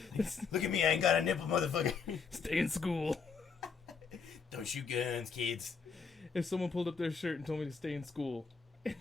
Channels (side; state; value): right; quieter; 5.5 dB